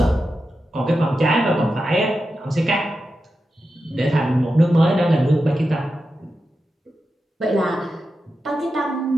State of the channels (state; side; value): normal; both; correlation 0.90